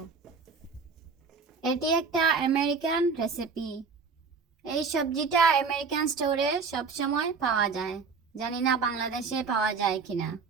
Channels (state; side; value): quieter; left; 5.0 dB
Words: এটি একটা আমেরিকান রেসিপি। এই সবজিটা আমেরিকান স্টোরে সবসময় পাওয়া যায়, জানি না বাংলাদেশে পাওয়া যায় কিনা।